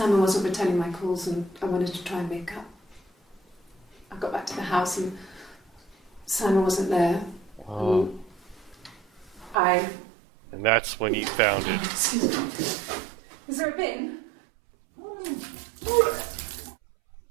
wasn't returning my calls and I wanted to try and make up. I got back to the house and Simon wasn't there. Oh. And that's when you found it. Is there a bin?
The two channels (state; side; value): drops out; left; at 9.6 s